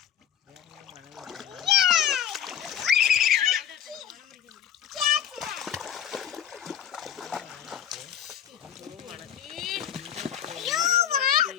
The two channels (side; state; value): right; quieter; 9.4 dB